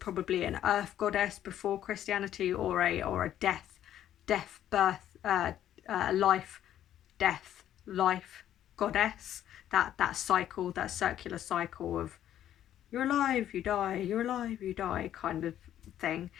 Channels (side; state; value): right; quieter; 11.4 dB